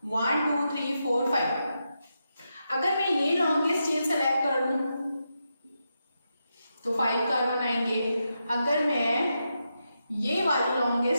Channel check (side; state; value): both; inverted; correlation -0.86